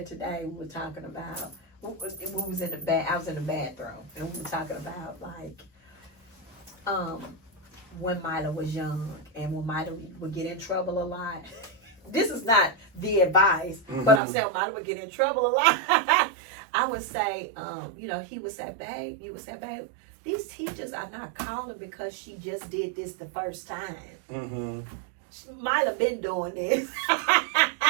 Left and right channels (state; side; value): drops out; left; at 14.2 s